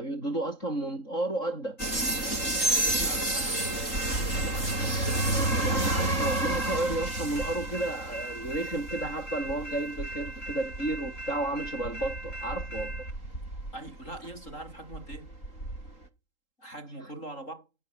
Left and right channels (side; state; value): right; late; 3.8 ms